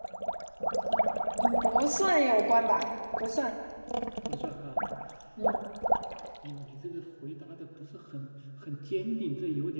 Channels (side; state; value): both; inverted; correlation -1.00